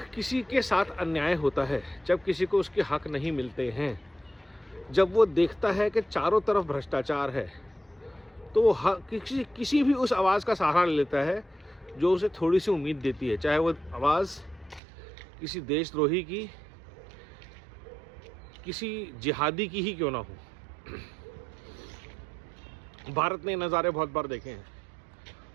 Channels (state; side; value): drops out; left; at 14.8 s